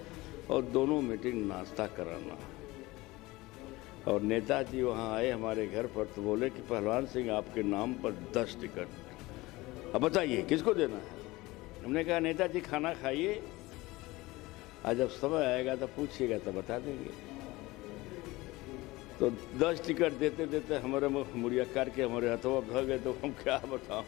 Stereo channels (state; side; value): quieter; right; 20.4 dB